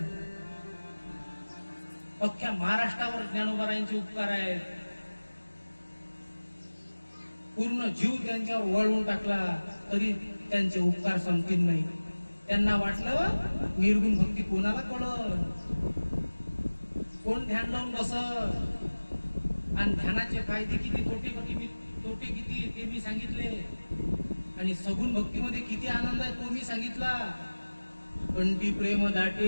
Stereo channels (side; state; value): both; inverted; correlation -1.00